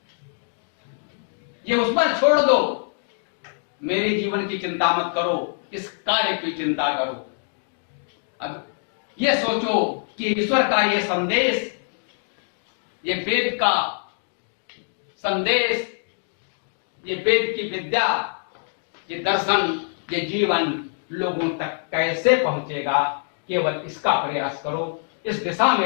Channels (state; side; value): silent; right; digital silence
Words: ये उस पर छोड़ दो। मेरे जीवन की चिंता मत करो, इस कार्य की चिंता करो। अब ये सोचो कि ईश्वर का ये संदेश, ये वेद का संदेश, ये वेद की विद्या, ये दर्शन, ये जीवन लोगों तक कैसे पहुंचेगा। केवल इसका प्रयास करो, इस दिशा